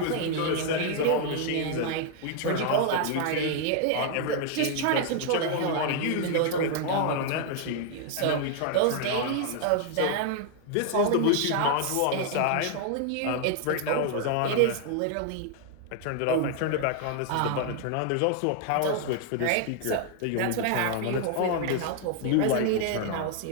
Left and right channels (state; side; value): different; both; correlation 0.00